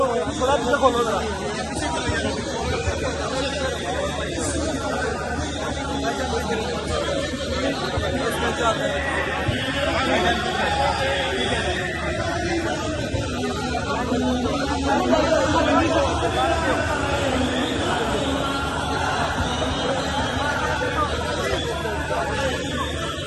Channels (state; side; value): identical; both; correlation 1.00